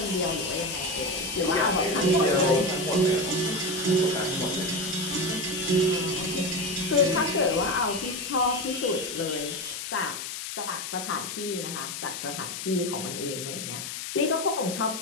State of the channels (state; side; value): noise; left; hiss, 6 dB below the sound